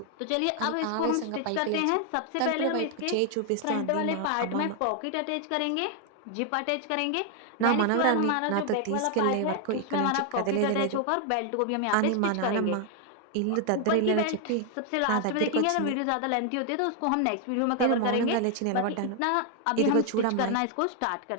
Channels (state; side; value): different; both; correlation 0.00